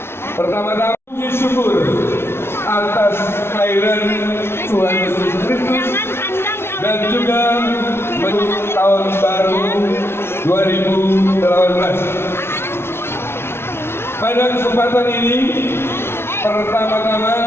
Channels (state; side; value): late; right; 0.12 ms